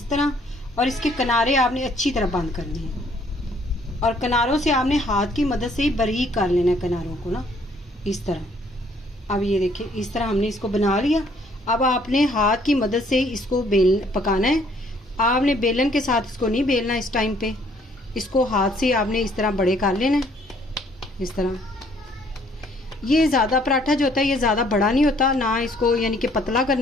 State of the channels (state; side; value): normal; both; correlation 0.63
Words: तरह, और इसके किनारे आपने अच्छी तरह बंद करने हैं, और किनारों से आपने हाथ की मदद से ही बारीक कर लेना है किनारों को ना, इस तरह। अब ये देखिए इस तरह हमने इसको बना लिया। अब आपने हाथ की मदद से इसको पकाना है। आपने बेलन के साथ इसको नहीं बेलना इस टाइम पे, इसको हाथ से आपने इस तरह बड़े कर लेना है इस तरह। ये ज़्यादा पराठा जो होता है ये ज़्यादा बड़ा नहीं होता ना, इसको यानी कि पतला